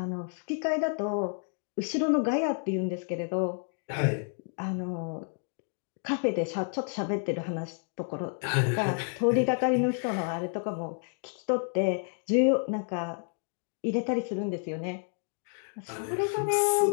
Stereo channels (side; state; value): right; silent; 55 dB below the other